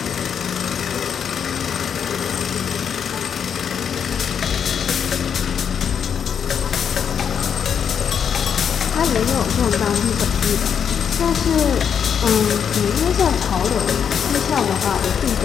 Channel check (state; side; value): quieter; right; 7.6 dB